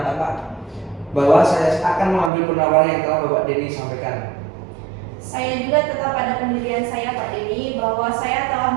Pak, bahwa saya akan mengambil penawaran yang telah Bapak Denny sampaikan. Saya juga tetap pada pendirian saya Pak Denny bahwa saya telah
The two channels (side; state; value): left; drops out; at 2.3 s